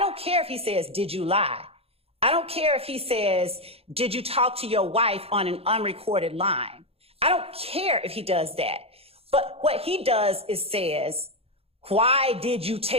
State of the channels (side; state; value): left; late; 0.28 ms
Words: care if he says, did you lie? I don't care if he says, did you talk to your wife on an unrecorded line? I don't care if he does that. But what he does is says, why did you